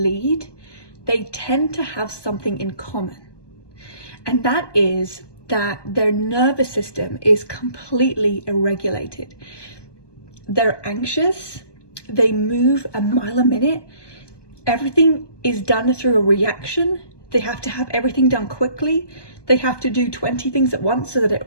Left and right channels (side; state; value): right; late; 1.2 ms